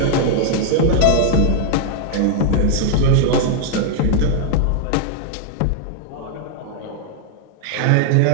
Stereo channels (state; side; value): different; both; correlation 0.00